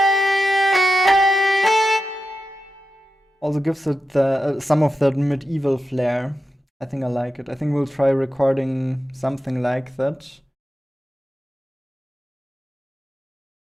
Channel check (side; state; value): both; normal; correlation 0.90